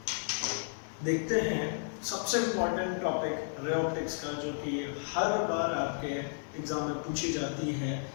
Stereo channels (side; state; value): right; silent; digital silence